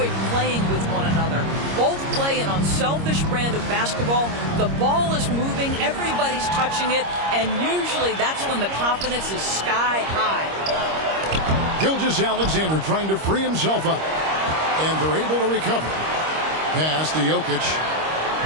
playing with one another. Both play an unselfish brand of basketball. The ball is moving, everybody's touching it, and usually that's when the confidence is sky high. Gilgeous-Alexander trying to free himself up. And they're able to recover. Pass to Jokic.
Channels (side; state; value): left; late; 26 ms